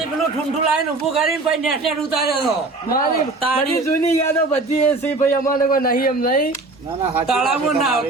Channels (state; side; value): quieter; left; 3.3 dB